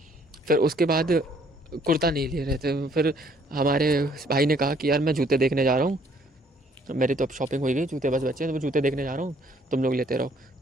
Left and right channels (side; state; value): both; normal; correlation 0.63